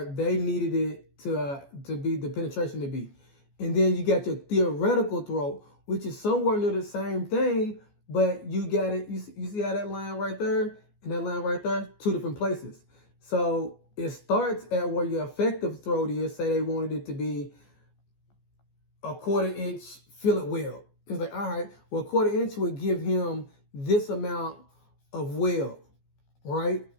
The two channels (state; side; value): late; right; 14 ms